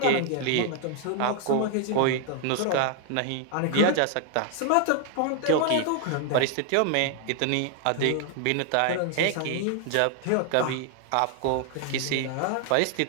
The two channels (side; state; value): both; different; correlation 0.00